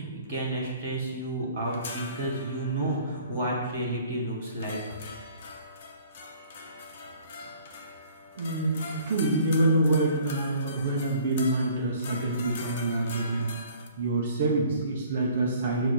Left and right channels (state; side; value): inverted; both; correlation -0.54